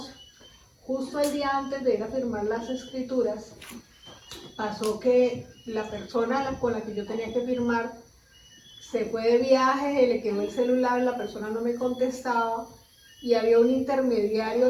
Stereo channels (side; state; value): both; identical; correlation 1.00